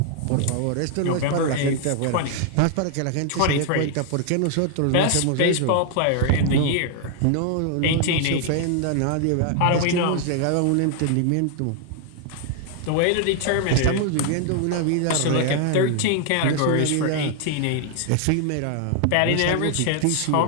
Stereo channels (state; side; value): different; both; correlation 0.00